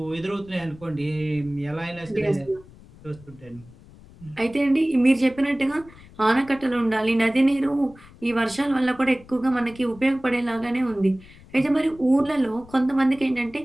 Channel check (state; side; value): noise; left; rumble, 22 dB below the sound